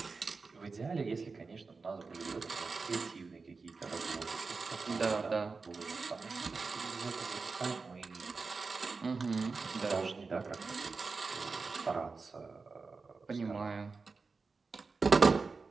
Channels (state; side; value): quieter; left; 4.3 dB